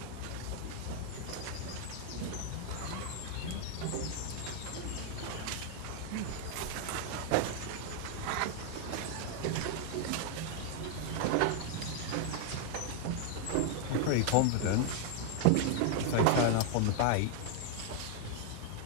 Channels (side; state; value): both; different; correlation 0.00